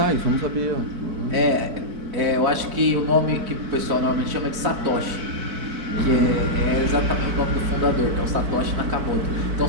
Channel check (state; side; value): late; left; 4.5 ms